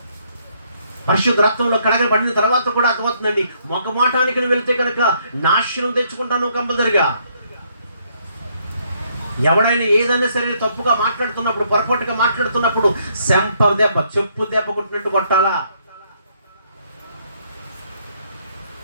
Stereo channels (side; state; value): both; inverted; correlation -0.70